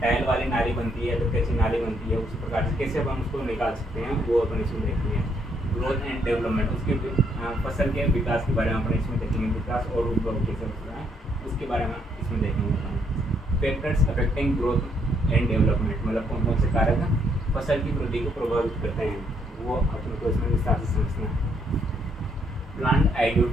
टाइल वाली नाली बनती है, फिर कच्ची नाली बनती है, उसी प्रकार से कैसे अपन उसको निकाल सकते हैं वो अपन इसमें देखेंगे। ग्रोथ एंड डेवलपमेंट, उसके फसल के विकास के बारे में अपन इसमें देखेंगे, विकास और उद्भव कैसे होता है उसके बारे में इसमें देखेंगे। Factors affecting growth and development, मतलब कौन कौन से कारक फसल की वृद्धि को प्रभावित करते हैं, वो अपन को इसमें विस्तार से समझना है। प्लांट आइडियो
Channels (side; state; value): both; normal; correlation 0.71